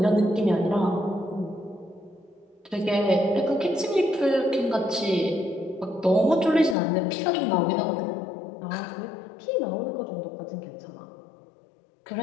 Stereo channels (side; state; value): right; drops out; at 6.8 s